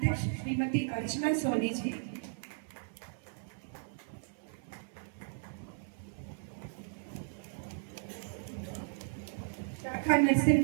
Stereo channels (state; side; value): silent; left; 54 dB below the other